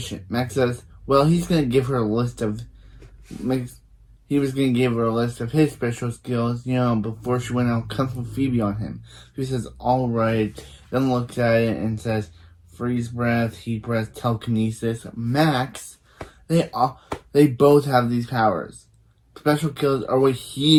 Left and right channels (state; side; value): identical; both; correlation 1.00